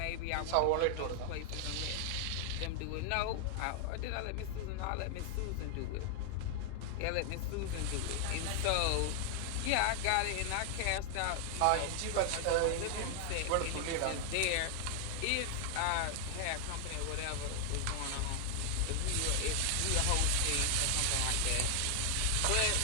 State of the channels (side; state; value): both; different; correlation 0.00